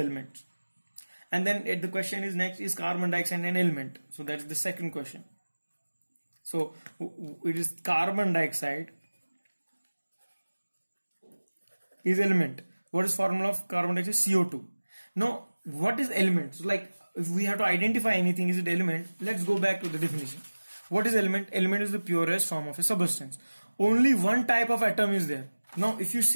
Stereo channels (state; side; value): inverted; both; correlation -1.00